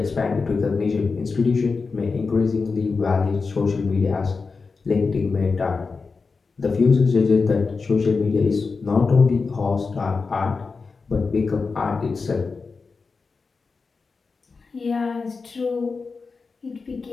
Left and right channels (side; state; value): right; quieter; 4.5 dB